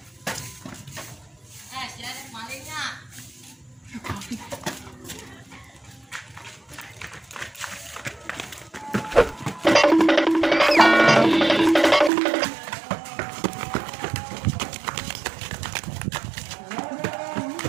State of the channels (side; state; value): left; drops out; at 12.1 s